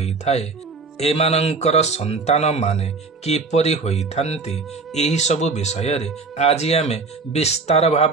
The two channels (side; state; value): left; quieter; 4.2 dB